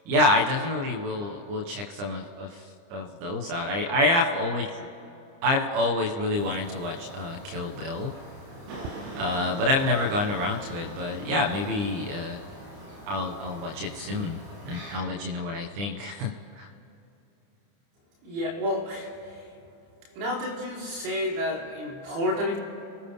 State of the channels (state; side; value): late; left; 30 ms